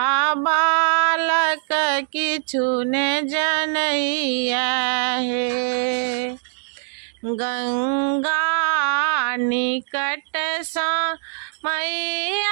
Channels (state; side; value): silent; left; digital silence